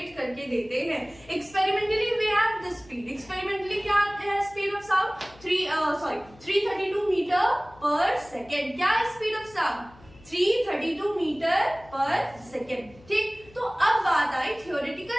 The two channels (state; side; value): noise; left; hum, 24 dB below the sound